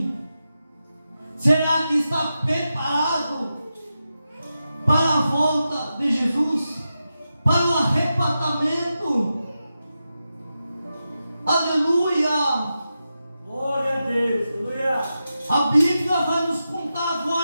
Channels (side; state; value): both; inverted; correlation -0.90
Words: será que está preparado para a volta de Jesus, para o arrebatamento? Aleluia! Glória a Deus, aleluia. A Bíblia vai nos contar